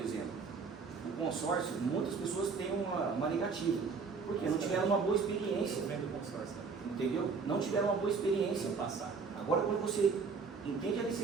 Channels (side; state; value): left; quieter; 5.1 dB